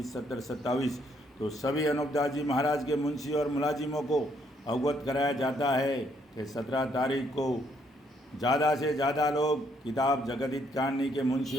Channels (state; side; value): normal; both; correlation 0.71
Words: 70 27। तो सभी अनूपदास जी महाराज के मुंशी और मुलाजिमों को अवगत कराया जाता है कि 17 तारीख को ज़्यादा से ज़्यादा लोग किताब जगदीत कहानी के मुंशी